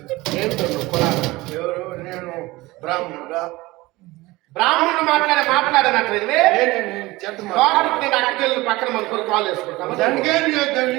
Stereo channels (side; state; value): left; quieter; 20.4 dB